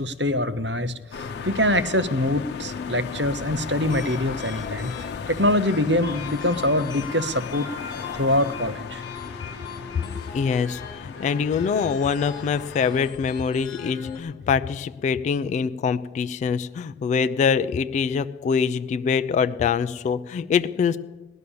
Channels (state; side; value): quieter; right; 3.6 dB